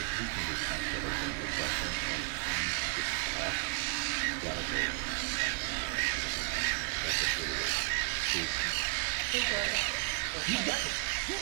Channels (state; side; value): quieter; left; 35.6 dB